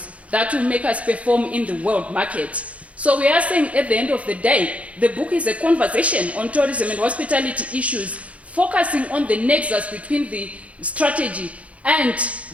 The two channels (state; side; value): late; left; 0.065 ms